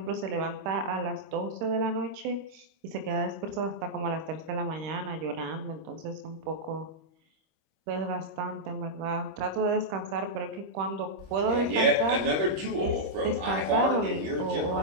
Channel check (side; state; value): left; late; 26 ms